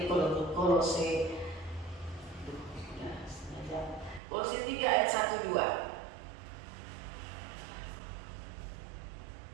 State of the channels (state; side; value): drops out; left; at 4.2 s